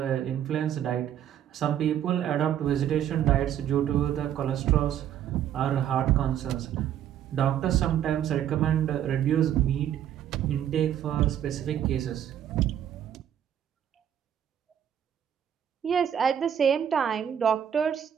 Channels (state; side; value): quieter; left; 10.0 dB